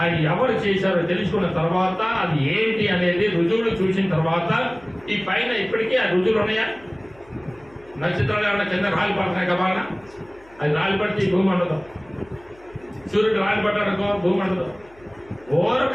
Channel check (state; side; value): noise; left; hum, 27 dB below the sound